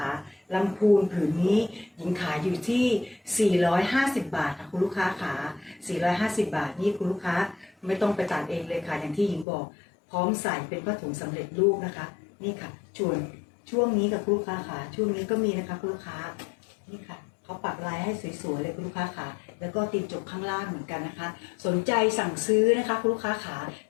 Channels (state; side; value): drops out; right; at 9.5 s